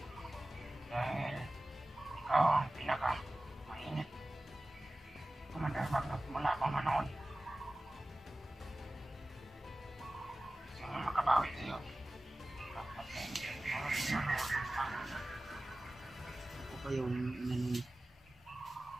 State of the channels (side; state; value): both; normal; correlation 0.97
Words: Dahil ikaw ang pinaka-mainit. Commander Bagnot mula pa manood. Gusto mo makabawi sa'yo. Dapat na hindi Ako pa yung inanong.